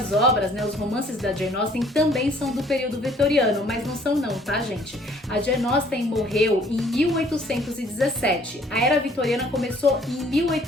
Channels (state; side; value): normal; both; correlation 0.59